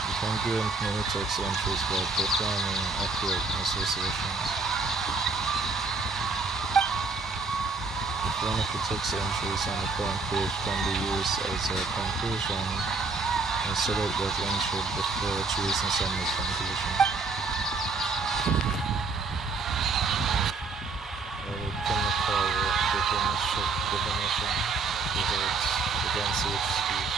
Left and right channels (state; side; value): quieter; left; 4.1 dB